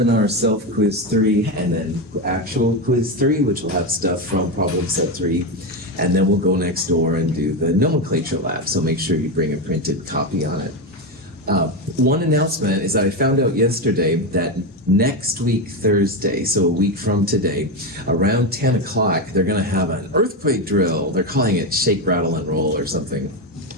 self-quiz 3 and then actual quiz 3, which will have stuff from problem set 3. And then we'll go next door and do the nomenclature lab, so make sure you bring a printed copy on it. One announcement is that I found out yesterday that next week, Thursday, so a week from today, around 10 o'clock, they're going to have an earthquake drill. They're calling it Shake, Rattle, and Roll or something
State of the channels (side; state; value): both; normal; correlation 0.12